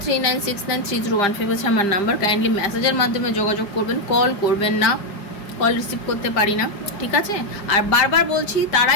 হচ্ছে আমার নাম্বার। কাইন্ডলি মেসেজের মাধ্যমে যোগাযোগ করবেন, কল করবেন না, কল রিসিভ করতে পারি না, ঠিক আছে? আর বারবার বলছি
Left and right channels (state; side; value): late; right; 5.0 ms